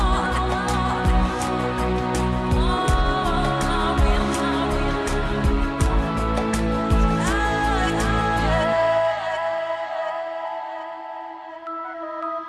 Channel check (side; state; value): both; identical; correlation 1.00